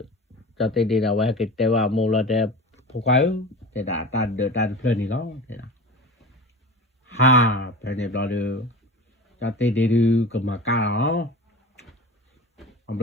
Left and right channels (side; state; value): both; normal; correlation 0.33